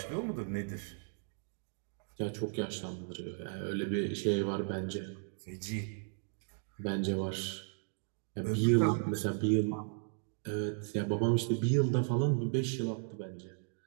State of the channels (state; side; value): silent; left; 54 dB below the other